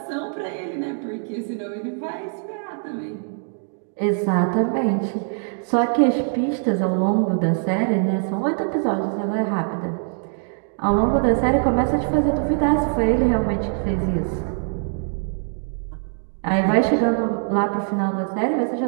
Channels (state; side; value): silent; left; 62 dB below the other